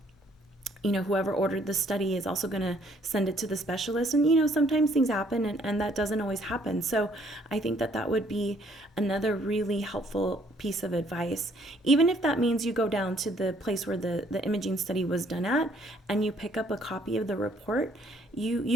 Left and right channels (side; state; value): both; normal; correlation 0.64